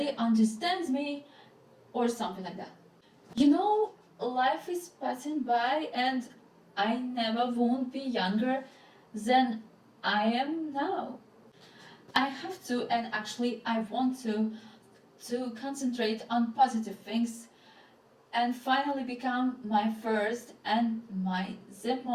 understands me, or something like that. You know, life is passing by and I never won't be younger than I am now. I have to, and actually I want to concentrate on positive things and finally become my first and the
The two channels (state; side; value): identical; both; correlation 1.00